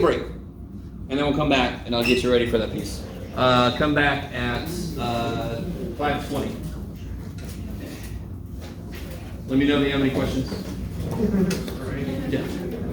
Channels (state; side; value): identical; both; correlation 1.00